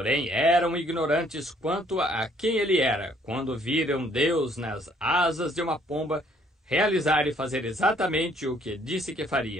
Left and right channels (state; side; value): normal; both; correlation 0.63